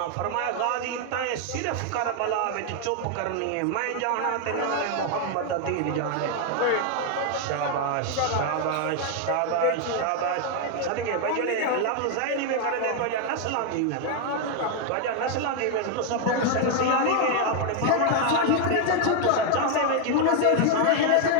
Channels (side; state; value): both; different; correlation 0.00